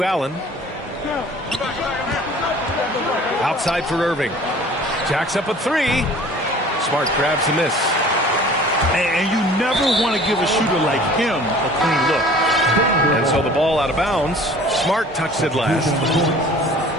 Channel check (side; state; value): both; normal; correlation 0.48